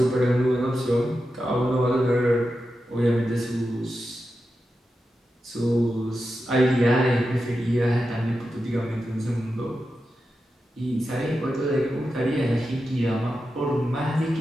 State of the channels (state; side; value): normal; both; correlation 0.90